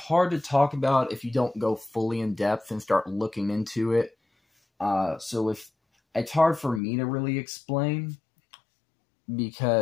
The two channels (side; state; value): right; drops out; at 6.8 s